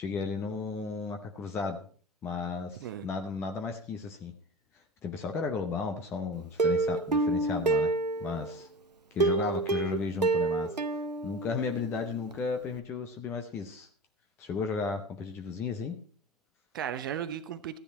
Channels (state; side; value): normal; both; correlation 0.33